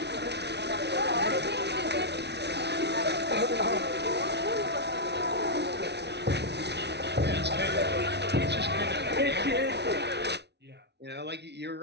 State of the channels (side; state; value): left; late; 0.50 ms